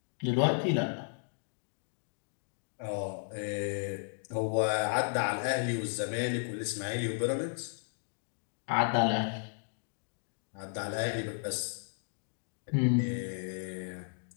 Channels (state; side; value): silent; right; digital silence